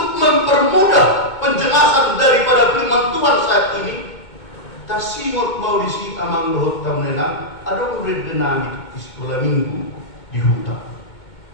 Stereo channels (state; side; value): late; right; 2.2 ms